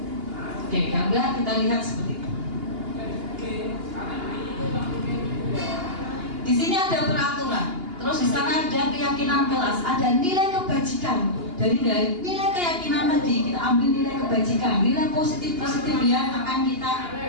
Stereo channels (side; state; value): left; late; 2.8 ms